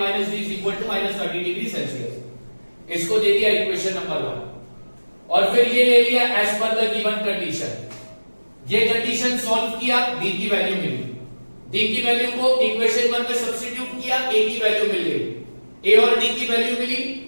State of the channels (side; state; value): both; inverted; correlation -1.00